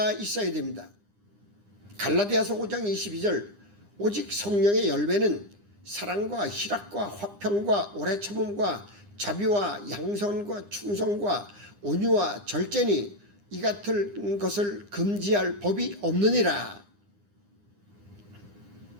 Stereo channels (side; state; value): left; late; 9.9 ms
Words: 있어야 됩니다. 갈라디아서 5장 22절 오직 성령의 열매는 사랑과 희락과 화평과 오래 참음과 자비와 양선과 충성과 온유와 절제니 이 같은 것을 금지할 법이 없느니라.